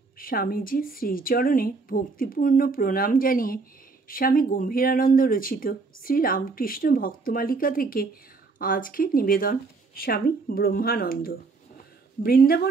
স্বামীজির শ্রীচরণে ভক্তিপূর্ণ প্রণাম জানিয়ে স্বামী গম্ভীরানন্দ রচিত শ্রীরামকৃষ্ণ ভক্তমালিকা থেকে আজকের নিবেদন স্বামী ব্রহ্মানন্দ।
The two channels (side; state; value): left; quieter; 4.1 dB